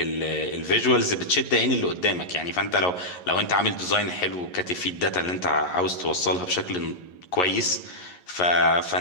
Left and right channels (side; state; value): right; late; 11 ms